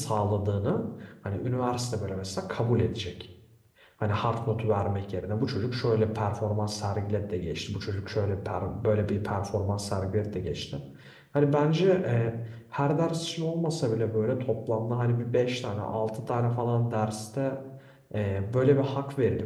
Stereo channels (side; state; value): both; identical; correlation 1.00